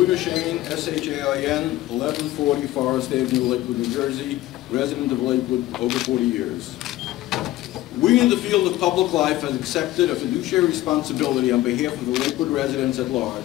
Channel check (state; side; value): quieter; right; 15.9 dB